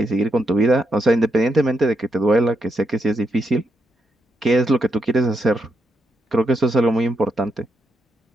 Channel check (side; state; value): both; normal; correlation 0.81